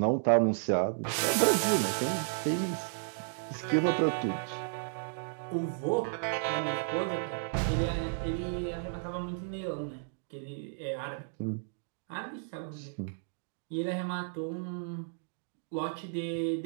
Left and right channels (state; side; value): silent; left; digital silence